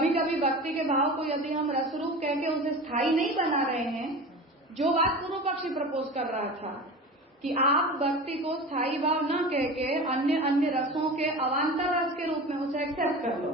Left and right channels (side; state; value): both; normal; correlation 0.32